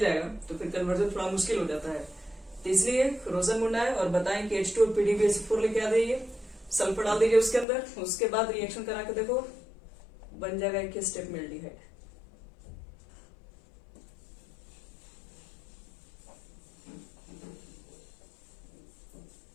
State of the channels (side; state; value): right; drops out; at 7.7 s